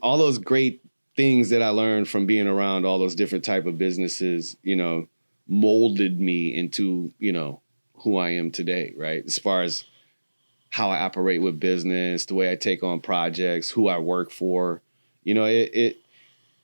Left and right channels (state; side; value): inverted; both; correlation -1.00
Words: all those great things that I learned from being around all those different type of businesses, molded me into, who I am today, right? As far as how I operate with business, the way I take on projects, who I work for,